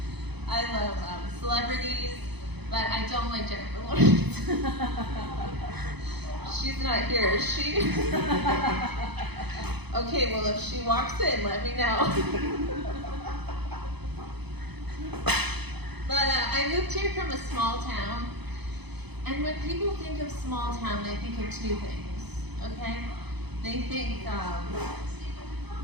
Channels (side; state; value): left; late; 0.98 ms